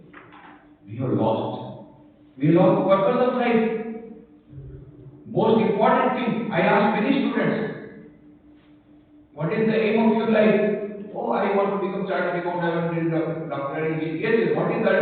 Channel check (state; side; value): identical; both; correlation 1.00